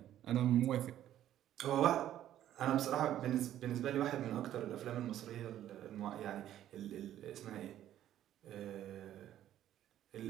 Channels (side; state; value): left; quieter; 12.0 dB